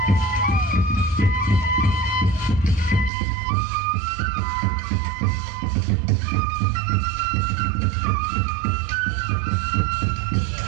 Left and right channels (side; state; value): left; drops out; at 3.1 s